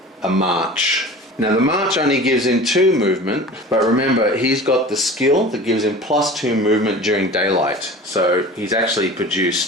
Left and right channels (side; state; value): both; normal; correlation 0.39